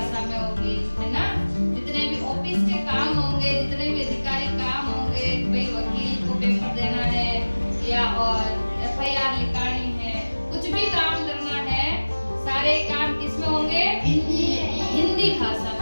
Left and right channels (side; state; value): both; inverted; correlation -1.00